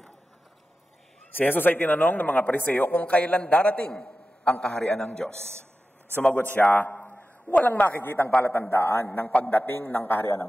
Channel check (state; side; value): normal; both; correlation 0.93